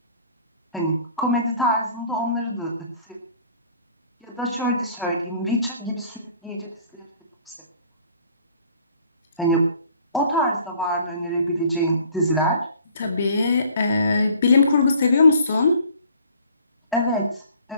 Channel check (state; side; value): inverted; both; correlation -0.53